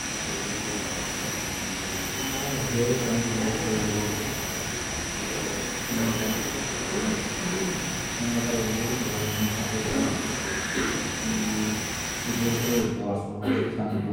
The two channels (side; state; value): both; identical; correlation 1.00